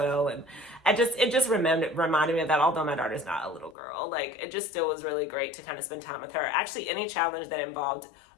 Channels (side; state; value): right; drops out; at 3.8 s